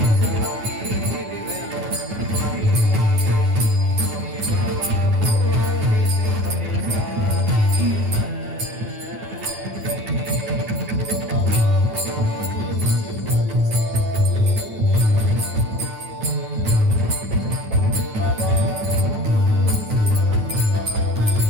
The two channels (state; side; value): late; left; 9.3 ms